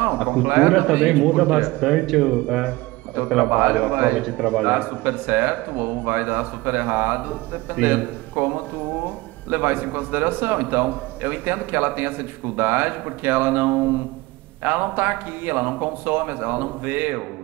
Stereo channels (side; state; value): left; quieter; 20.7 dB